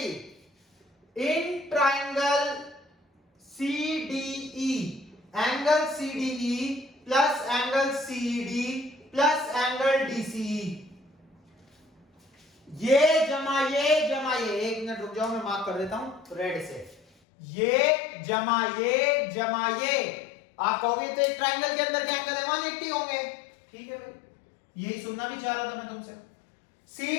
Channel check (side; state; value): right; drops out; at 17.1 s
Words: In triangle CDE, angle CDE plus angle CED plus angle DCE, ये जमा ये, एक मिनट रुक जाओ, मैं मार्क कर देता हूं रेड से, ये जमा ये, आप कहोगे तो एक ट्रायंगल के अंदर के एंगल है 180 होंगे, ठीक है भाई, यही सुनना भी चाह रहा था मैं तुमसे।